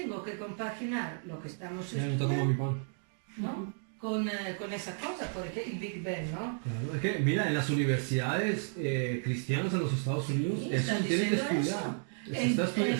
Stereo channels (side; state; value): left; silent; 56 dB below the other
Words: que compaginar lo que estamos Ya no está como mi estudiando, pan. ¿no? Con esa cosa, porque el Big Bang, ¿no? Claro, es que mira, en las universidades cristianas en los Estados Unidos, Sí, eso están tienen que diciendo estudiar. eso.